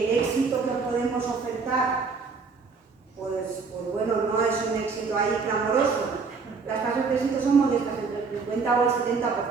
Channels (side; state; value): left; quieter; 4.8 dB